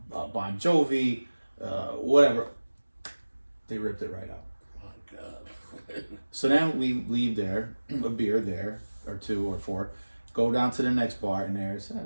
Bon Jovi, whatever. They ripped it right out. My God. So then we leave there, a beer there, or two or four, go down to the next bar, and there's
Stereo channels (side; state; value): both; inverted; correlation -1.00